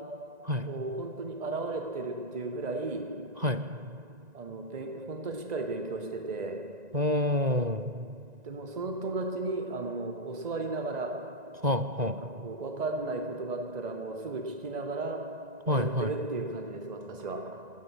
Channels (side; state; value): left; late; 1.9 ms